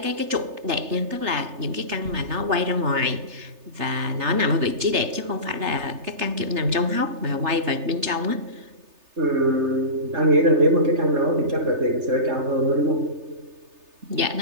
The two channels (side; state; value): left; late; 3.3 ms